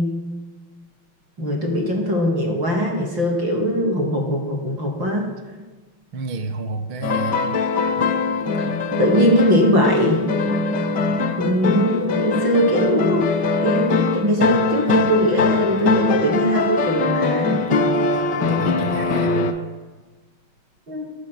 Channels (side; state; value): left; late; 5.8 ms